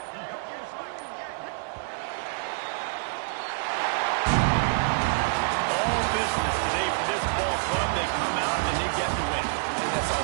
All business today for this ball club. They come out and they get the win. And that's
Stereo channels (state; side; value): silent; left; digital silence